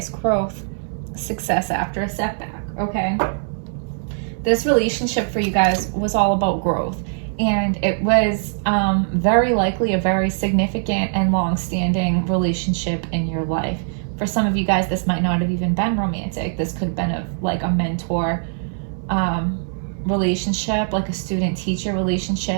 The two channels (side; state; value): left; silent; 65 dB below the other